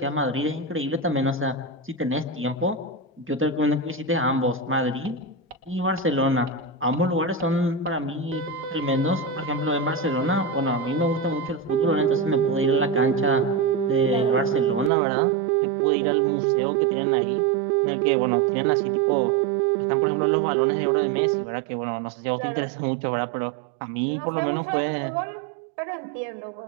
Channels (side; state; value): left; drops out; at 14.9 s